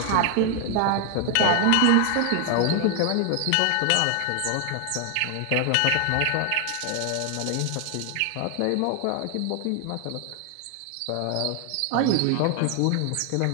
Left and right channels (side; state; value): both; different; correlation 0.00